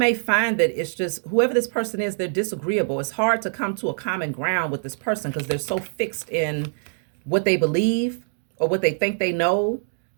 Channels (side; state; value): left; silent; digital silence